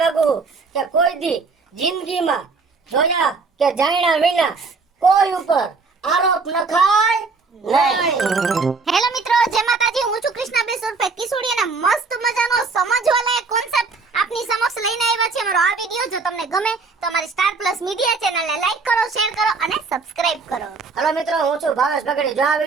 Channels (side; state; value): left; quieter; 4.4 dB